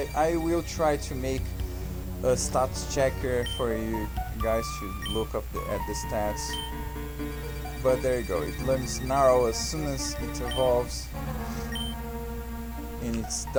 I will try to make a stats checker for you guys to look up at the stats. But there you go, it learns Snarl as soon as it evolves. and it's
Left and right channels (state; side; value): identical; both; correlation 1.00